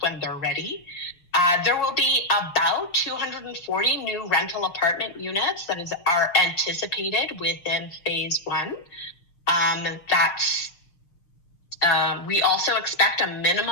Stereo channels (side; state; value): right; late; 6.5 ms